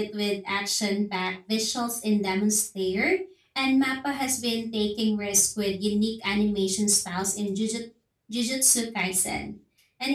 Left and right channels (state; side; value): identical; both; correlation 1.00